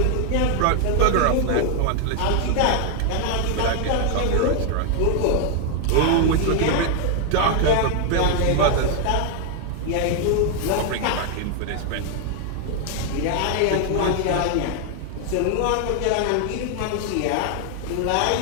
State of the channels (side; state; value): both; different; correlation 0.00